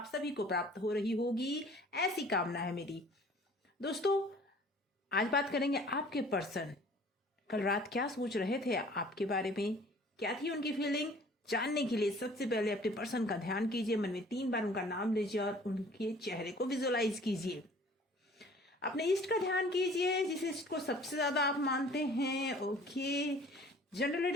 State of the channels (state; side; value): normal; both; correlation 0.51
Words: सभी को प्राप्त हो रही होगी, ऐसी कामना है मेरी। दोस्तों, आज बात करेंगे आपके पर्सन कल रात क्या सोच रहे थे आपके बारे में, क्या थी उनकी फीलिंग। जानने के लिए सबसे पहले अपने पर्सन का ध्यान कीजिए, मन में 3 बार उनका नाम लीजिए और उनके चेहरे को विजुअलाइज कीजिए। अपने इष्ट का ध्यान कीजिए, जिस इष्ट को सबसे ज्यादा आप मानते हैं। ओके, जनरल